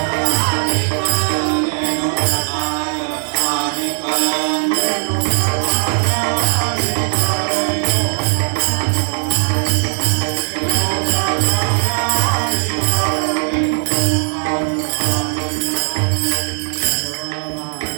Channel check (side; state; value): left; silent; digital silence